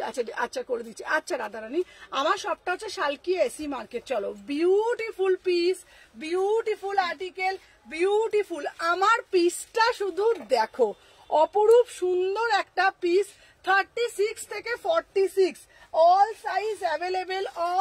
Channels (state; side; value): identical; both; correlation 1.00